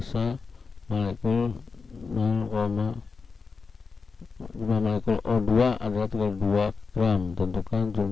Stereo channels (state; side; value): quieter; right; 4.9 dB